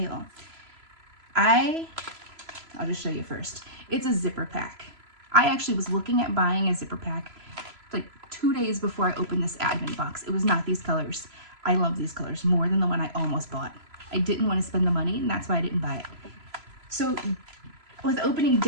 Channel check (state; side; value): late; left; 3.0 ms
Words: I'll just show you first. It's a zipper pack. I actually was looking at buying a zipper pack like 2 days before I opened this Advent box. It was not these colors. I love these colors more than the one I almost bought. I didn't want to spend the money, and that's why I didn't buy it. So with opening